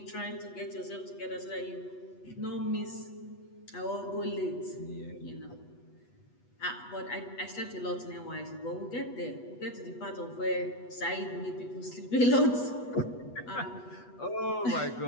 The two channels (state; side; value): late; right; 8.2 ms